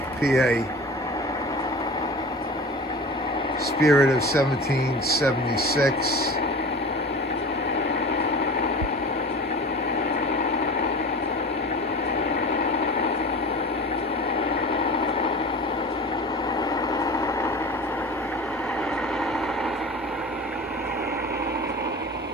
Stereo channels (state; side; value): normal; both; correlation 0.36